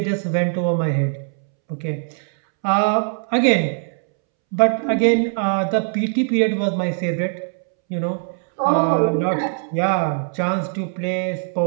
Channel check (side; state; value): left; silent; 65 dB below the other